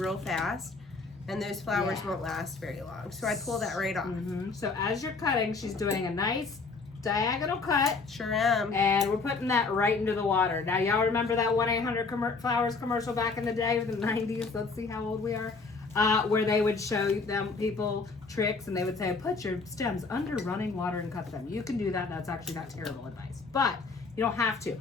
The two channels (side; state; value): right; quieter; 4.3 dB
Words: fast and those flowers Yeah. won't last very long. So I pull that right off. So as you're cutting, she's doing a nice diagonal cut, Sure am. and we're putting that right into the water. Now, y'all remember that 1-800-Flowers commercial back in the day, the 90s? Let's see how old we are. Where they would show them people tricks, and they would say, put your stems under running water and cut them. You can do that. That's actually not terrible advice, but you don't have to.